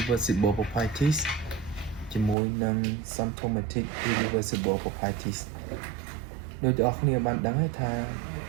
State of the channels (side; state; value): left; drops out; at 2.4 s